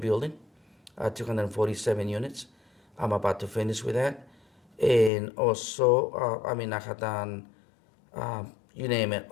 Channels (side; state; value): right; drops out; at 5.1 s